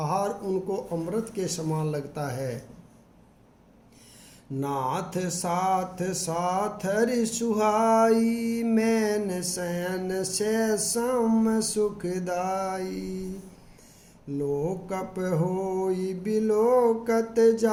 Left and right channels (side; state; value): both; identical; correlation 1.00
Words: उनको अमृत के समान लगता है। नाथ साथ साथ हरि सुहाई, मैन शयन से सम सुखदाई। लोकप होई बिलोकत